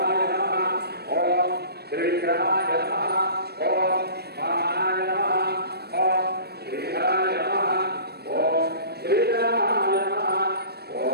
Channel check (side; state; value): left; late; 0.47 ms